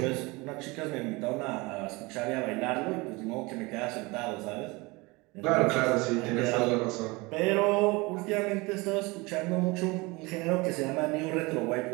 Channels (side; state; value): left; quieter; 24.5 dB